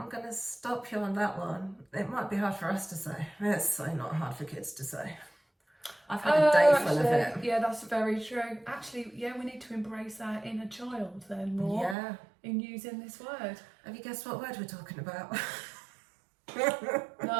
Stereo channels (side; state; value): left; drops out; at 12.0 s